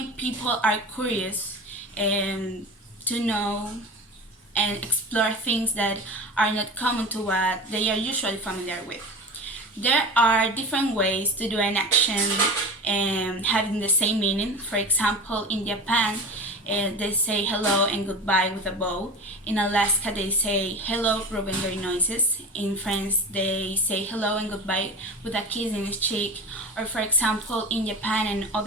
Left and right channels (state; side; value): normal; both; correlation 0.32